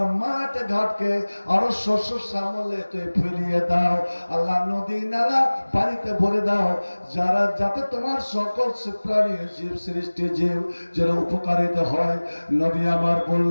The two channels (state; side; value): inverted; both; correlation -1.00